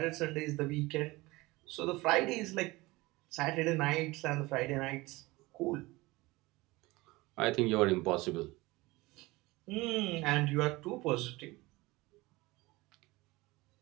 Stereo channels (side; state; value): left; quieter; 21.4 dB